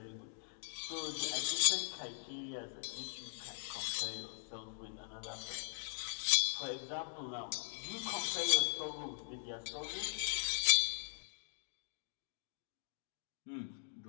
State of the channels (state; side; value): silent; right; digital silence